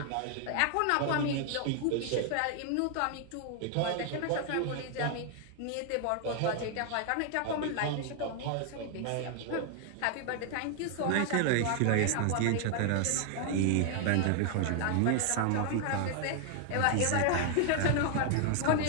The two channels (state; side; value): different; both; correlation 0.00